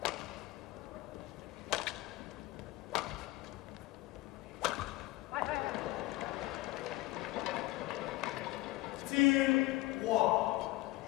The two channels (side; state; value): right; quieter; 18.9 dB